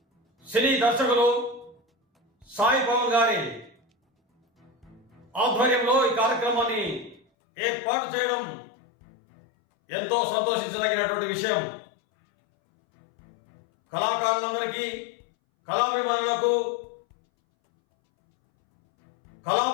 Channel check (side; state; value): right; drops out; at 7.2 s